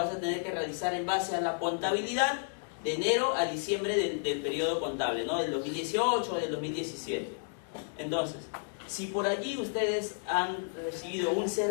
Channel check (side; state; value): right; silent; digital silence